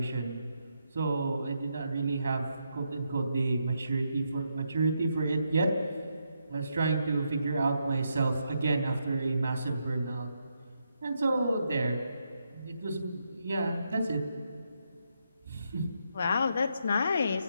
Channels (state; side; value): inverted; both; correlation -0.81